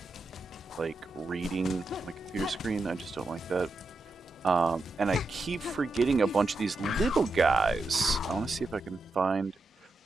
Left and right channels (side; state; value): left; quieter; 3.0 dB